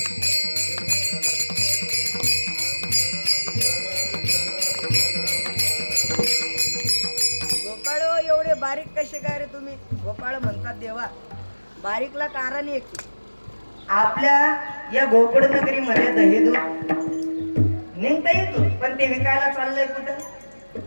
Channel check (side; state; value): both; inverted; correlation -1.00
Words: गोपाळ एवढे बारीक कसे काय रे तुम्ही? गोपाळ म्हणतात देवा, बारीकला कारण एक, आपल्या या गोकुळ नगरीमध्ये दही दूध निघता येतो, पण ते विकायला चाललंय कुठं?